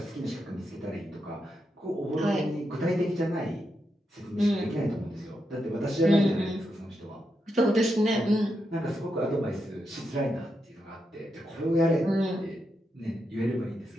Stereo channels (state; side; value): normal; both; correlation 0.84